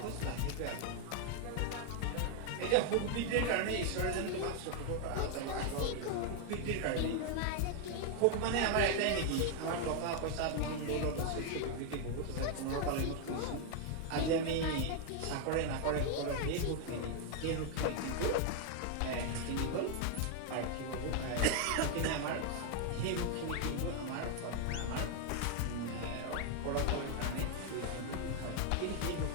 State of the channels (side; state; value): both; different; correlation 0.00